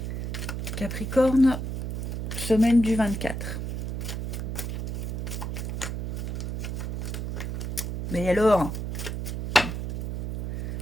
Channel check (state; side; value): noise; right; hum, 3 dB below the sound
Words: Capricorne, semaine du 24. Mais alors,